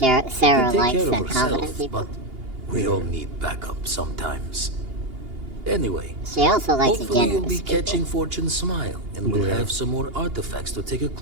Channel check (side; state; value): left; late; 2.8 ms